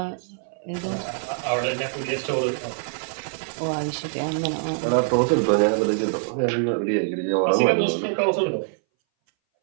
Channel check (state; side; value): silent; left; 60 dB below the other